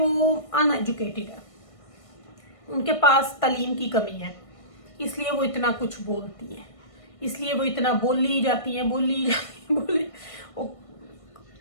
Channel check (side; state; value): right; late; 1.6 ms